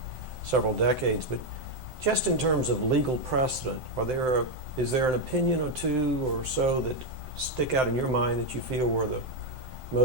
several decades. But just in terms of legal precedent, is there an opinion or two or so that stick out in your mind that you feel were the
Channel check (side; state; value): left; late; 7.7 ms